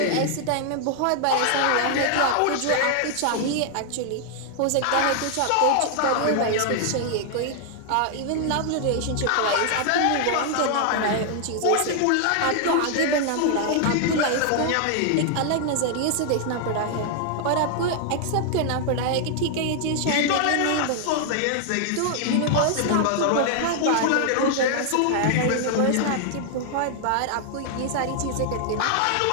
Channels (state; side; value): different; both; correlation 0.00